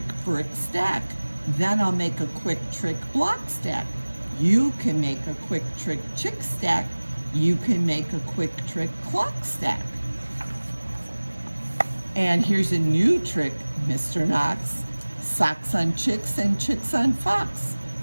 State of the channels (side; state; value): both; inverted; correlation -1.00